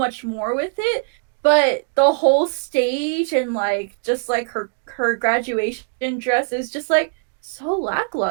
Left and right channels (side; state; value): left; silent; digital silence